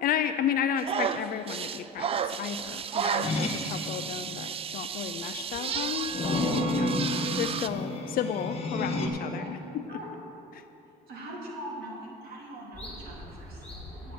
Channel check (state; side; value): normal; both; correlation 0.31